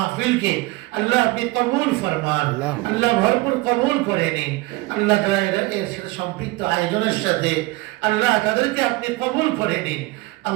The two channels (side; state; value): left; quieter; 21.2 dB